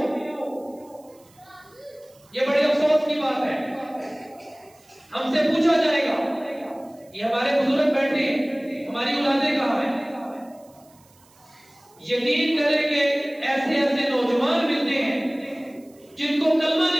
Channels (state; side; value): noise; right; hiss, 29 dB below the sound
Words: ये बड़े अफसोस की बात है। हमसे पूछा जाएगा, ये हमारे बुजुर्ग बैठे हैं, हमारी औलादें कहां हैं? यकीन करें कि ऐसे ऐसे नौजवान मिलते हैं जिनको कलमा